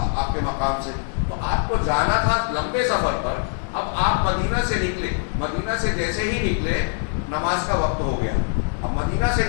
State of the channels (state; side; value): silent; right; 59 dB below the other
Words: کے مقام سے، تو آپ کو جانا تھا لمبے سفر پر۔ اب آپ مدینہ سے نکلے، مدینہ سے جیسے ہی نکلے نماز کا وقت ہو گیا۔ اب مدینہ سے